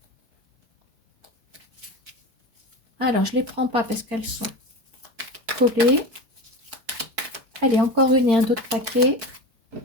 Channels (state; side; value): late; left; 4.6 ms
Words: Alors, je ne les prends pas parce qu'elles sont collées. Allez, encore une et un autre paquet.